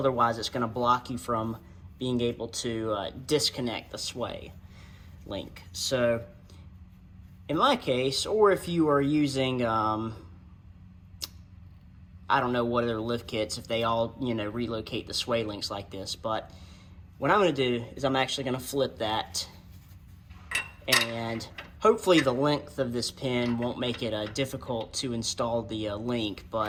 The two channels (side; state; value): both; identical; correlation 1.00